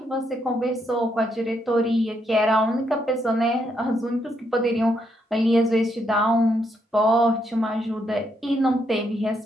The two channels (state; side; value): normal; both; correlation 0.77